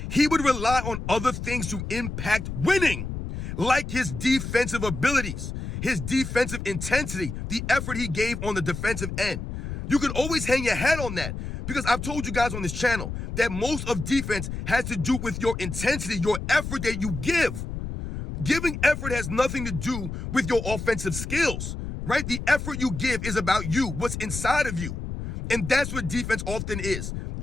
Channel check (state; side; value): noise; left; rumble, 6 dB below the sound